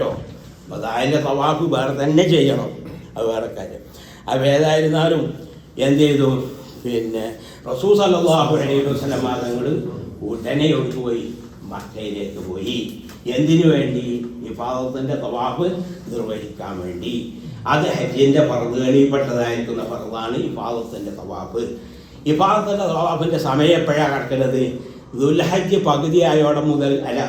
ഒതായൻ്റെ തവാഫ് വേറെ തന്നെ ചെയ്യണം, അത് വേറെ കാര്യം. അപ്പോൾ ഏതായിരുന്നാലും എന്ത് ചെയ്തു? പിന്നെ റസൂൽ സല്ലല്ലാഹു അലൈഹി വസല്ലം തങ്ങൾ ഉടനെ ഒട്ടുപോയി മക്കയിലേക്ക് പോയി. എന്തിനു വേണ്ടി? ഇഫാദത്തിൻ്റെ തവാഫ് നിർവഹിക്കാൻ വേണ്ടി. അത് ഹജ്ജിൻ്റെ ഫർദുകളിൽപ്പെട്ടതായിരിക്കുന്ന ഫർദാണ് ഇഫാദത്തിൻ്റെ തവാഫ്. ഇഫാദത്തിൻ്റെ തവാഫിൻ്റെ സമയം എപ്പോഴാണ് കിടക്കുന്നത്? ദുൽഹജ്ജ് പകുതിയായോടെ മുതൽ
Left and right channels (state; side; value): identical; both; correlation 1.00